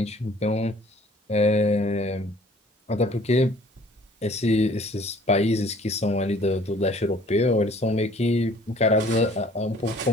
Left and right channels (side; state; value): both; normal; correlation 0.54